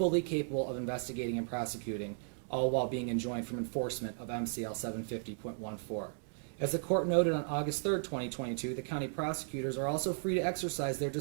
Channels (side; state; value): left; silent; digital silence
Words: capable of investigating and prosecuting, all while being enjoined from enforcement of MCL 750.14. As the court noted on August 3, 2022, the county prosecutors are also free to exercise their